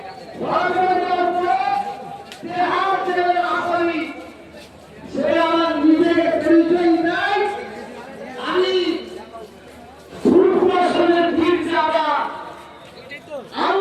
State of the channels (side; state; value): both; identical; correlation 1.00